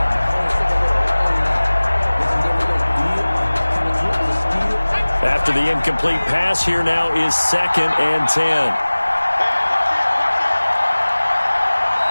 After the incomplete pass, here now is 2nd and 10.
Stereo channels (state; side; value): inverted; both; correlation -1.00